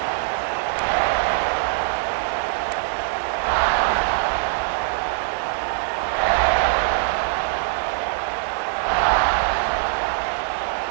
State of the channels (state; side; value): silent; left; digital silence